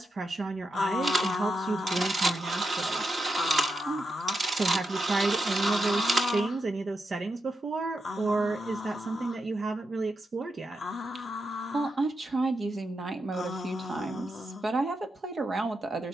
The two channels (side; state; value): both; normal; correlation 0.86